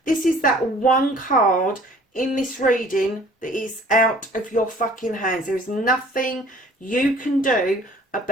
that one card in this reading that is out of your fucking hands. There is nothing you can do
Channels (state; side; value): normal; both; correlation 0.52